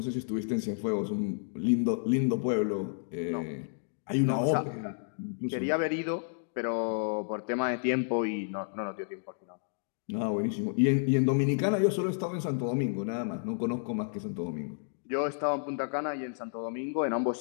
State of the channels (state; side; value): silent; right; digital silence